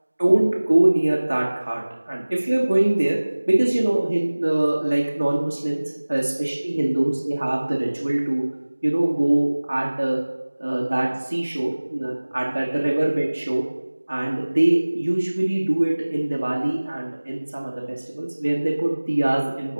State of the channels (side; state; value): both; inverted; correlation -1.00